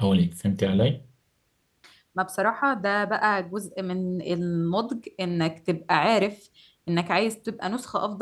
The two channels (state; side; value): identical; both; correlation 1.00